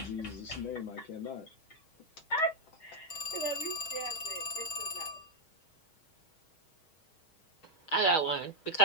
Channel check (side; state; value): right; late; 6.3 ms